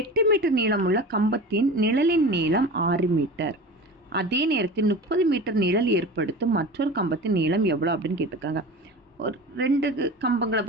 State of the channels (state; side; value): normal; both; correlation 0.33